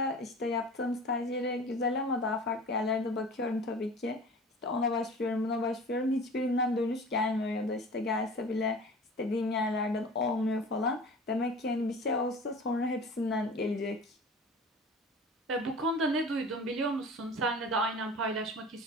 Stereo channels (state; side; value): normal; both; correlation 0.39